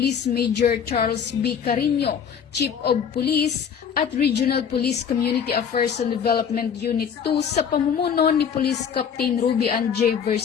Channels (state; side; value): quieter; right; 7.4 dB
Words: Major Charles B. Carino, Chief of Police, at Regional Police Community Affairs and Development Unit 2 sa pamumuno ni Police Captain Ruby Ann J.